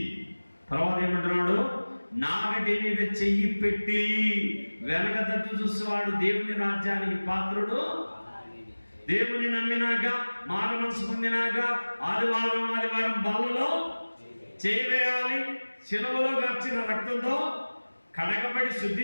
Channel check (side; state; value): both; inverted; correlation -1.00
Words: తర్వాత ఏమంటున్నాడు? నాగటి మీద చెయ్యి పెట్టి వెనక తట్టు చూసేవాడు దేవుని రాజ్యానికి పాత్రుడు. దేవుని నమ్మినాక, మార మనసు పొందినాక ఆదివారం బల్లలో చేయవేయాలి. శిలువలో గార్చిన రక్తంతో కడగబడి